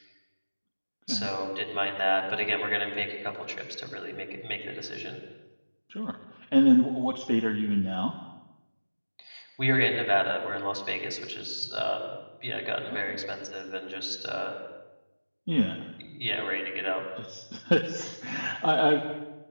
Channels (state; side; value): inverted; both; correlation -1.00